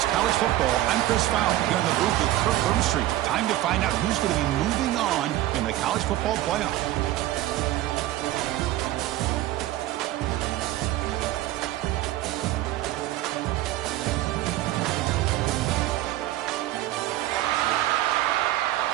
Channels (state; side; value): quieter; left; 15.0 dB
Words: College Football, I'm Chris Fowler here in the booth with Kirk Herbstreit. Time to find out who's going to be moving on in the college football playoff.